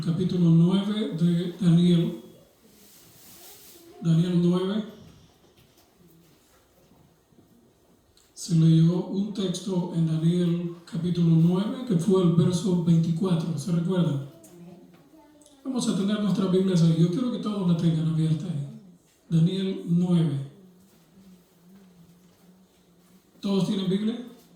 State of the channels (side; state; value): both; identical; correlation 1.00